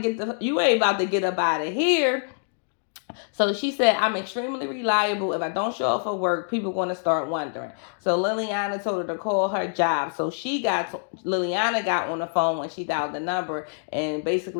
get up out of here." So she said, "I'm extremely reliable. If I don't show up for work, people going to start wondering." So Liliana told her to call her job. So Liliana got on the phone when she dialed the number and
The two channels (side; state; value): right; silent; digital silence